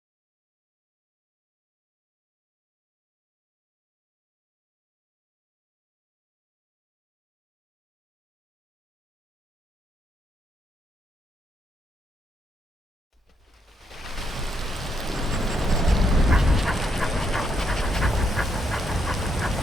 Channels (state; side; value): normal; both; correlation 0.77